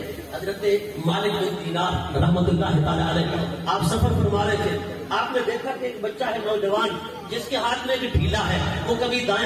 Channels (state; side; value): identical; both; correlation 1.00